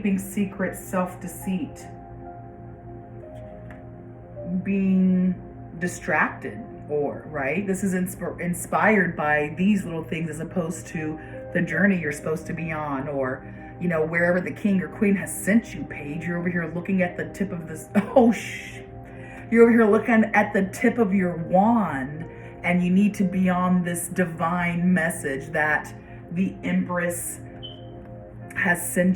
secrets, self-deceit, being distracted, or, right? This is inspired by these little things as opposed to the journey you're supposed to be on, or, you know, wherever the king or queen has sent you, Paige. You're over here looking at the tip of this, you're over here looking at the tip of your wand, and you need to be on this divine message that the Empress has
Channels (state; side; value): identical; both; correlation 1.00